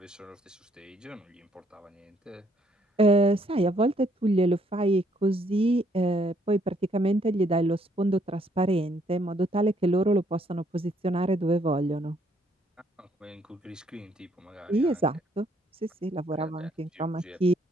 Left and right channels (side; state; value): both; normal; correlation 0.68